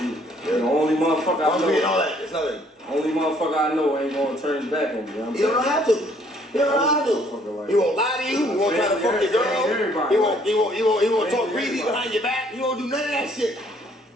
the only motherfucker I know. All that. It's nothing. Only motherfucker I know ain't gonna turn his back on me. You know what I'm You don't have to. You don't know how to. He won't lie to you. He won't try to fuck your girl. He won't talk greedy behind your back. He won't do none of that shit.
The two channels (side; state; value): both; normal; correlation 0.63